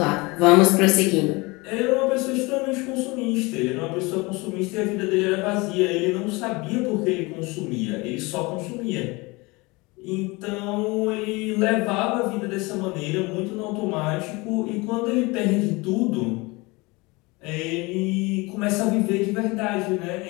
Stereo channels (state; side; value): quieter; right; 24.7 dB